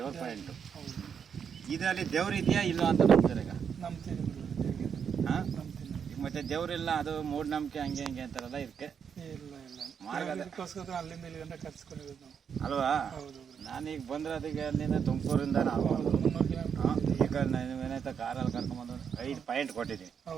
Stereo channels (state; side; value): quieter; left; 7.2 dB